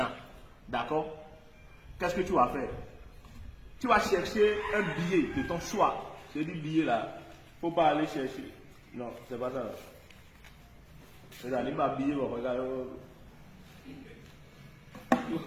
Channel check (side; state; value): both; identical; correlation 1.00